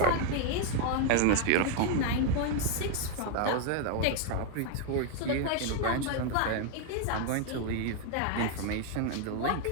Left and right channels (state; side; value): different; both; correlation 0.00